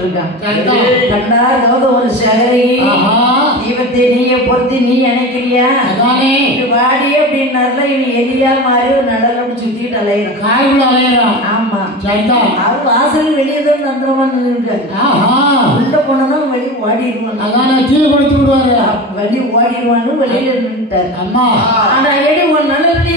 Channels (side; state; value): both; normal; correlation 0.28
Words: இருக்கான். கண்டா ஒரு சகரி தீபத்தை நீய பொறுத்து நீ நினைக்கிறியா வாடி அப்படின்னாருல இவன் எலியா மாதிரி ஒரு நடலோடு சுத்திட்டு அலையிறான். ஆமா, அவர் வாசல் வெளியே தான் தந்திரமா நின்றுருக்காரு. உள்ள போனதான் வெளியே ஓடிடுவான். கீழே கொடுத்து விடுவாரு. வெளியே ஓடிடுவான்னு வெளியில நின்றுட்டாரு. ஆனா எடி ஒரு நல்ல